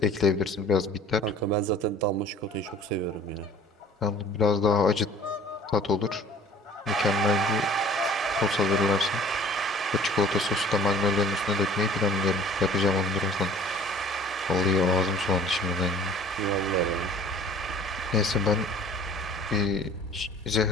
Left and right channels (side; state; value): both; normal; correlation 0.49